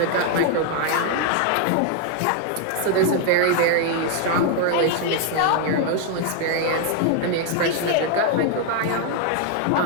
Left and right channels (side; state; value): both; different; correlation 0.00